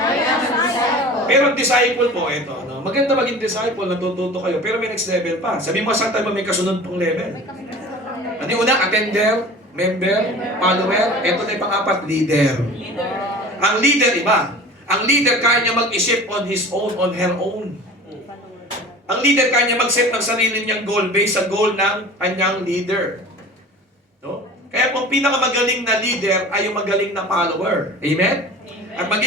am a disciple. Pero ang disciple po, ito, no? Maganda maging disciple, natututo kayo, pero may next level pa. Sabi mo, saan tayo may kasunod pong level? Ano yung una? Attender, member, follower. Ito na yung pang-apat, leader. Ang leader, iba. Ang leader, kaya niya mag-isip on his own, on her own. Ang leader, kaya niya mag-set ng sarili niyang goal based sa goal ng kanyang leader. No? Kaya kung pinakamagaling na leader ay yung magaling na follower. Amen? At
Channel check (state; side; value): normal; both; correlation 0.40